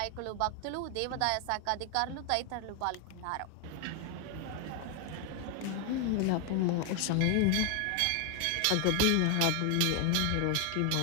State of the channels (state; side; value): different; both; correlation 0.00